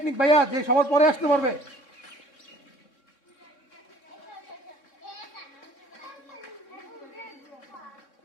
ভাইয়া, যে সবার পরে আসতে পারবে।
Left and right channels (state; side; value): late; right; 3.6 ms